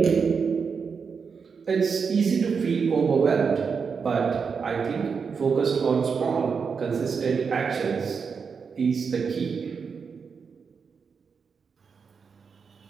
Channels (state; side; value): quieter; left; 5.8 dB